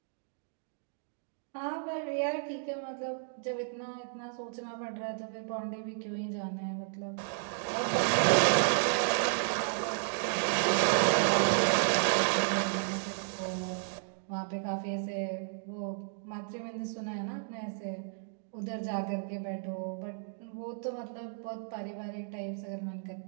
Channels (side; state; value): left; silent; digital silence